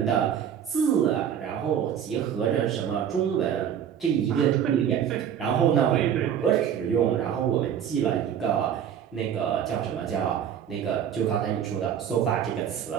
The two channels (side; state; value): left; quieter; 8.9 dB